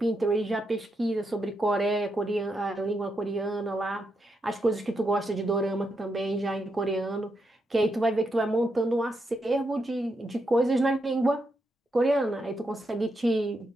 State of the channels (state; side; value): normal; both; correlation 0.82